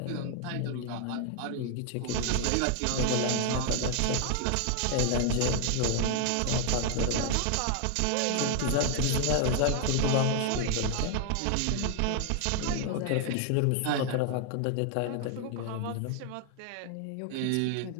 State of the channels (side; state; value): both; different; correlation 0.00